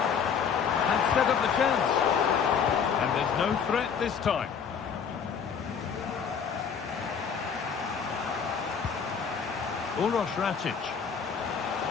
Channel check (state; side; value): quieter; right; 6.8 dB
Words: And set up the chance. And there's no threat this time. Uroš Rakic.